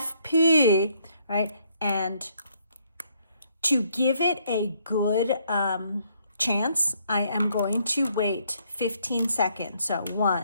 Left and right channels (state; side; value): inverted; both; correlation -0.69